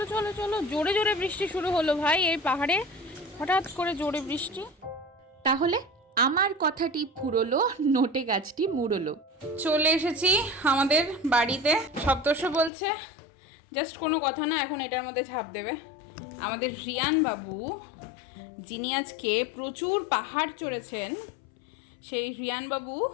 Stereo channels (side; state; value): right; drops out; at 12.7 s